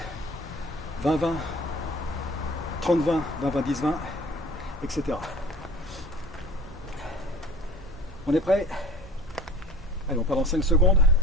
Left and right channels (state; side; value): normal; both; correlation 0.43